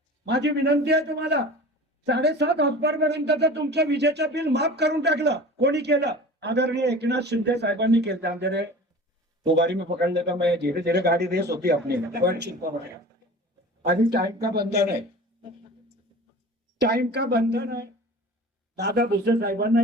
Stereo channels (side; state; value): both; normal; correlation 0.38